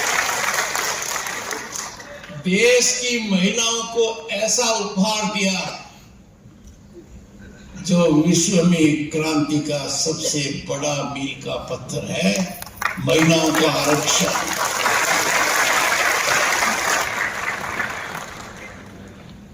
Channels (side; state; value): both; identical; correlation 1.00